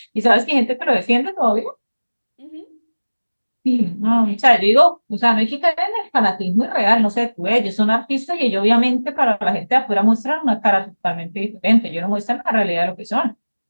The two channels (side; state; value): both; inverted; correlation -1.00